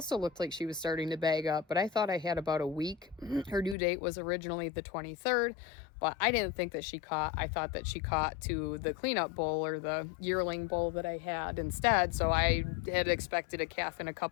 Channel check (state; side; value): drops out; right; at 3.8 s